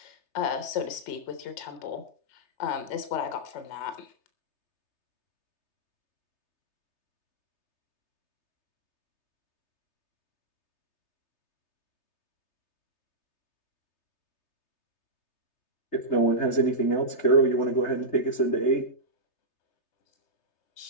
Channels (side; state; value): right; late; 3.3 ms